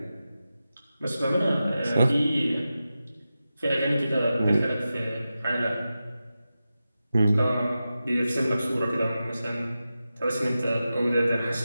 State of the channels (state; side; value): inverted; both; correlation -0.92